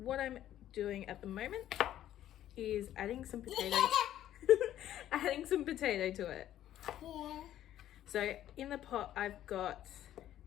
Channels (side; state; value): right; quieter; 12.2 dB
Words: I'm doing at the moment is adding some potatoes adding some potato to it. So in the pot I've got